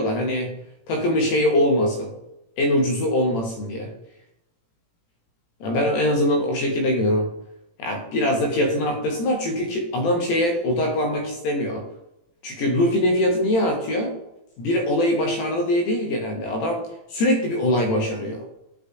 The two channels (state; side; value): late; right; 18 ms